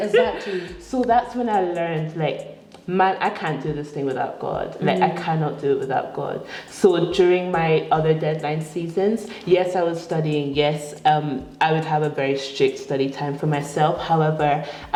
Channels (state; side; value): identical; both; correlation 1.00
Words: So that's when I learned, like, man, I can't do this thing without God. Like, I cannot do it without God. So during my other deadline seasons, yes, I was studying. Yes, I would have a very strict study time for myself. However,